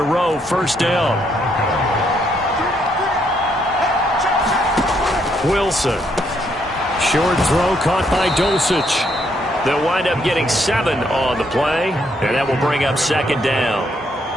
row, 1st down. Wilson. Short throw caught by Dulcich. They'll wind up getting 7 on the play, and that will bring up 2nd down.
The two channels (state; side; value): normal; both; correlation 0.73